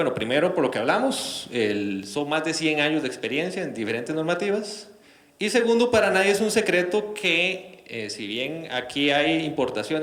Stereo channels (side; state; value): both; identical; correlation 1.00